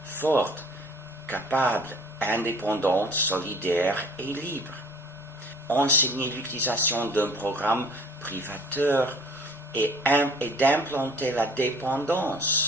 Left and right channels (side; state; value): both; normal; correlation 0.51